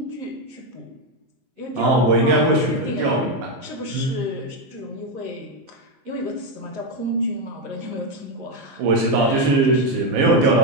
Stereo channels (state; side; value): late; left; 15 ms